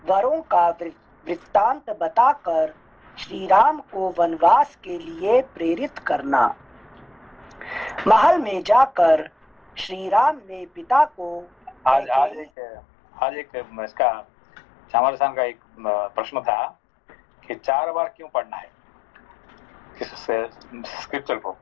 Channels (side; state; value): right; drops out; at 12.5 s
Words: वरों का वृत्तांत बताकर श्रीराम को वनवास के लिए प्रेरित करना। महल में जाकर श्रीराम ने पिता को आज एक इसका चामर साहब का एक प्रश्न था कि 4 बार क्यों पढ़ना है किस स्क्रिप्चर को,